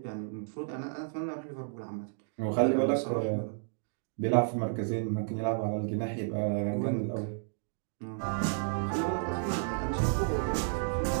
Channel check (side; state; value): left; silent; digital silence